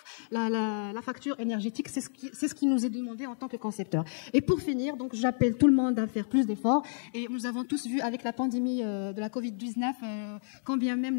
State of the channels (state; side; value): silent; right; 58 dB below the other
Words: la facture énergétique. C'est ce qui nous est demandé en tant que concepteur. Et pour finir, donc j'appelle tout le monde à faire plus d'efforts, et nous avons tous vu avec la pandémie de la Covid-19 combien même